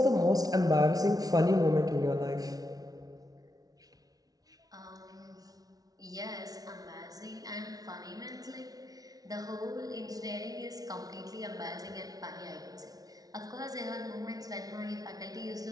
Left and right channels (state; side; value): late; left; 0.18 ms